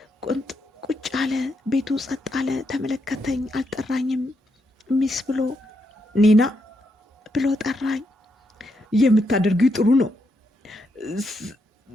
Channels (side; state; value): both; normal; correlation 0.80